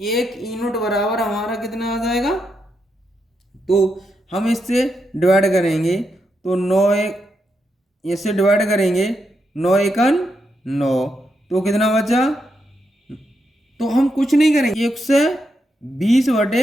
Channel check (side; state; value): both; normal; correlation 0.82